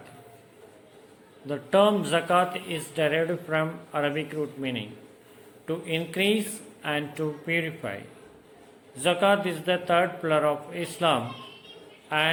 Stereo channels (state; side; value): identical; both; correlation 1.00